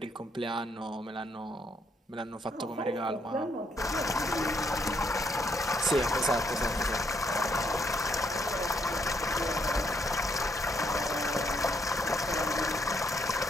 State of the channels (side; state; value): both; normal; correlation 0.72